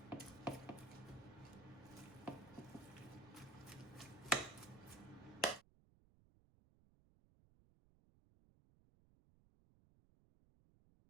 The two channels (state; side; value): noise; right; rumble, 25 dB below the sound